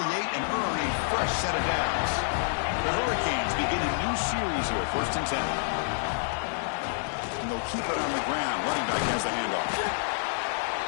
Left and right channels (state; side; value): silent; right; digital silence